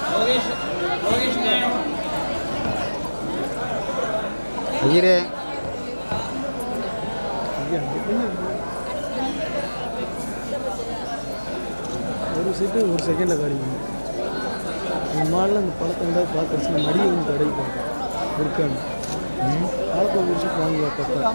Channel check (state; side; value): inverted; both; correlation -1.00